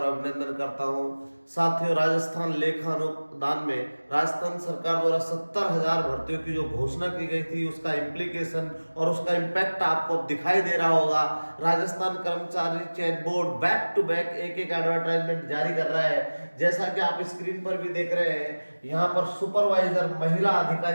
अभिनंदन करता हूं। साथियों, राजस्थान लेखा अनुदान में राजस्थान सरकार द्वारा 70,000 भर्तियों की जो घोषणा की गई थी उसका इम्प्लीकेशन और उसका इम्पैक्ट आपको अब दिखाई दे रहा होगा। राजस्थान कर्मचारी चयन बोर्ड बैक टू बैक एक एडवर्टाइजमेंट जारी कर रहा है। जैसा कि आप स्क्रीन पर भी देख रहे हैं, यहाँ पर सुपरवाइजर महिला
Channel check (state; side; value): inverted; both; correlation -1.00